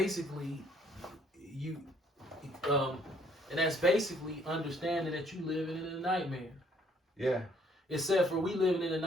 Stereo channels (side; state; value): both; normal; correlation 0.64